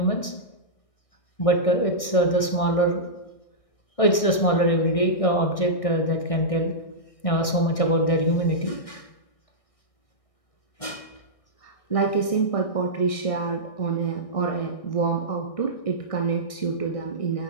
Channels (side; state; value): right; late; 1.6 ms